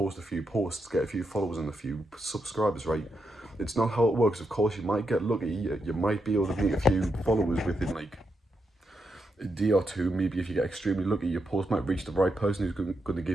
a few posts, get a few followers and a few subscribers, right? It's not how it works. Of course, you might get lucky, you might be able to meet a few followers within like a day or two. Maybe if you get extremely lucky, your post might reach the right person who's going to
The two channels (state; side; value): normal; both; correlation 0.83